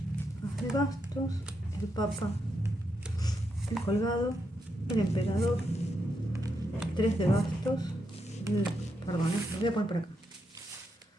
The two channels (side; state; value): both; normal; correlation 0.82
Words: As de bastos, el papa, el colgado, el emperador, el 3 de bastos, perdón, lo voy a poner por acá.